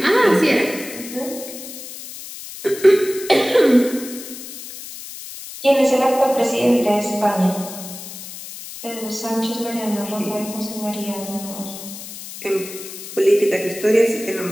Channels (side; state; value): left; noise; hiss, 12 dB below the sound